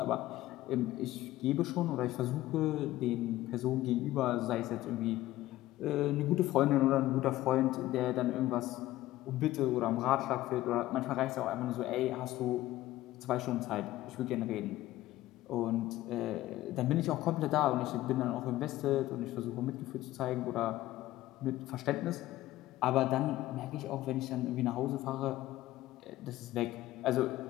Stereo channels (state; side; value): quieter; right; 15.8 dB